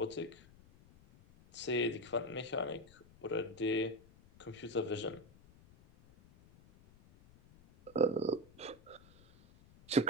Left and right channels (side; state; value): left; noise; rumble, 24 dB below the sound